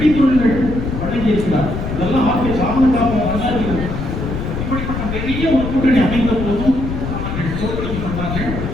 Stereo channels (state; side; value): noise; left; rumble, 4 dB below the sound